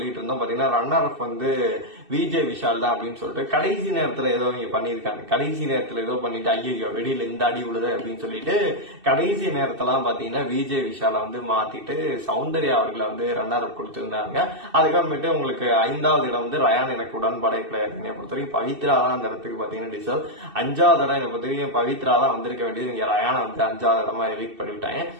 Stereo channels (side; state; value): left; late; 2.6 ms